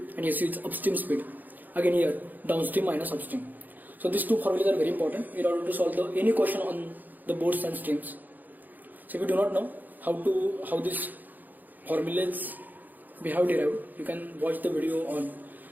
and su is upstream speed. Again here, downstream minus upstream. So these two formulas are very important in order to solve any question on the boats and streams. So if you do not know how these formulas we have derived, you can watch the video on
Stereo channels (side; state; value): left; late; 0.085 ms